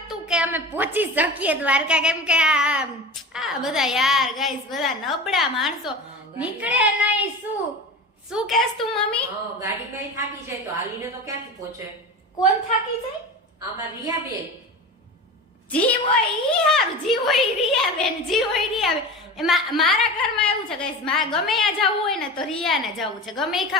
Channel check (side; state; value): both; normal; correlation 0.31